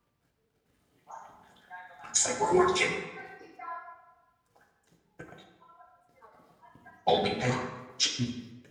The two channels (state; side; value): identical; both; correlation 1.00